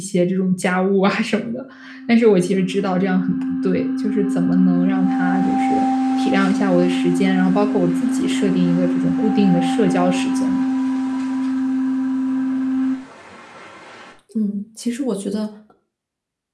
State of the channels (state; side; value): identical; both; correlation 1.00